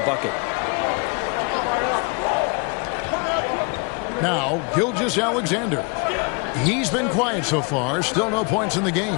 Now, Gilgeous-Alexander. He's been quiet so far. Still no points in the game.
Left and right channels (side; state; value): right; quieter; 33.9 dB